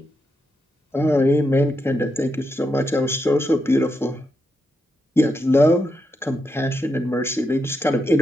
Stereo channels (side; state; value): both; normal; correlation 0.84